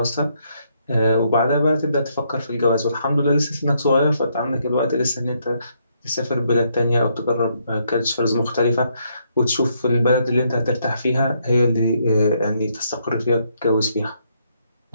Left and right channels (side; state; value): both; inverted; correlation -0.74